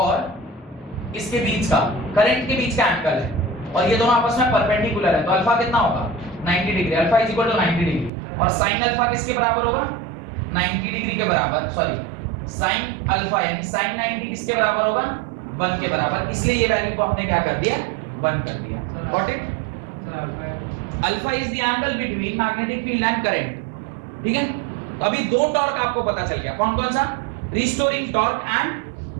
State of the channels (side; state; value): left; drops out; at 8.1 s